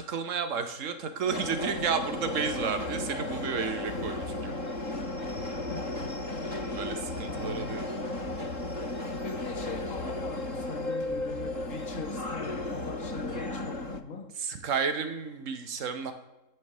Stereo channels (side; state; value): left; late; 3.7 ms